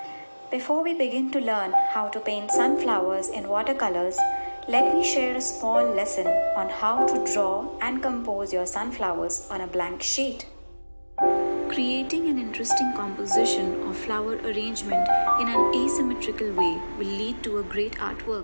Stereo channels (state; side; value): inverted; both; correlation -1.00